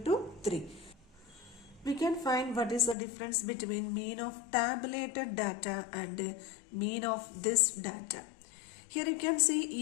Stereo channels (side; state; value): right; drops out; at 3.0 s